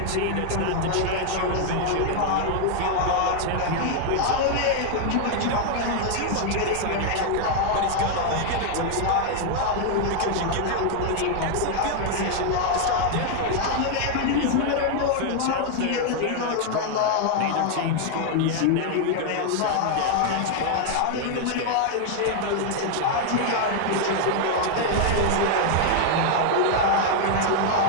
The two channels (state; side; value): different; both; correlation 0.00